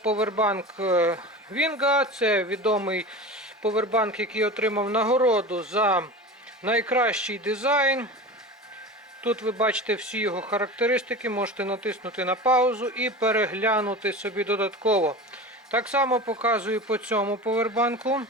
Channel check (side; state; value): both; normal; correlation 0.31